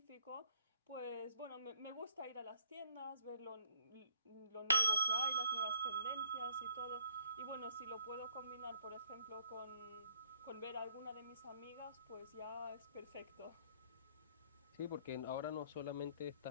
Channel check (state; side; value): inverted; both; correlation -0.60